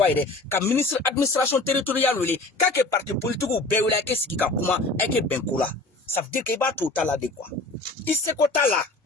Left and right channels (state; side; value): quieter; right; 3.0 dB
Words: de ka ministre administration territoriale wele ka ke parti politique ou be wele ke siki ka kuma e ke benkula ça veut dire que ba tout tala de quoi il se ko tala